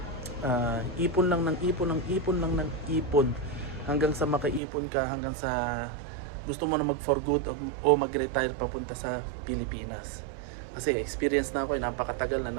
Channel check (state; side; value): drops out; left; at 4.6 s